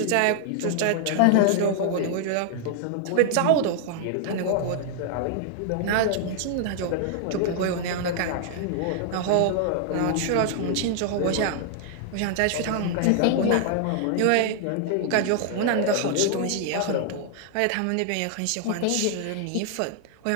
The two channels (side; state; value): both; different; correlation 0.00